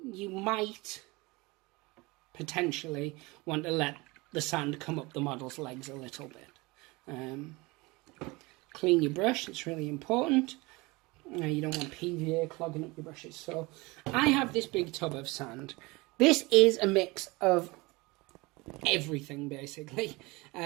you might potentially want to let the sand come up the model's legs a little bit. Clean your brush, it's really important. You don't want PVA clogging up your brushes. So I have this big tub of sand. This is a mix of everything, basically.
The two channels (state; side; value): quieter; left; 23.8 dB